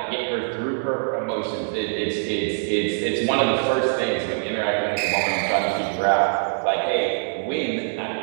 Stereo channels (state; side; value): silent; left; 63 dB below the other